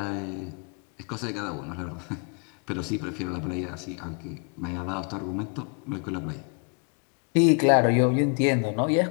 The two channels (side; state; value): right; quieter; 38.6 dB